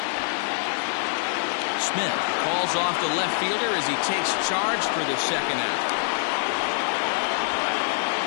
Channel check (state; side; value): silent; right; 62 dB below the other